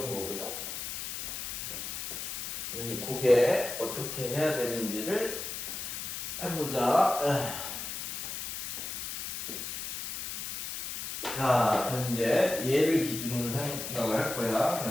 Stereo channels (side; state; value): left; noise; hiss, 5 dB below the sound